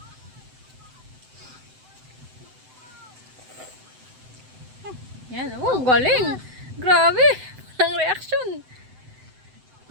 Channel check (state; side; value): late; left; 7.8 ms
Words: Yan. Oh, galing. Grabe. Walang reaction.